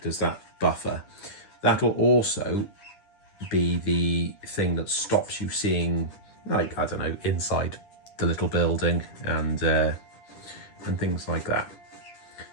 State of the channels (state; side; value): late; right; 10 ms